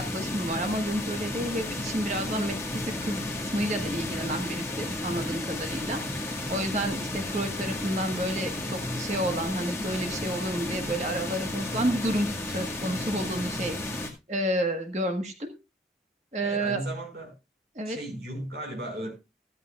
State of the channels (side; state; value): both; normal; correlation 0.56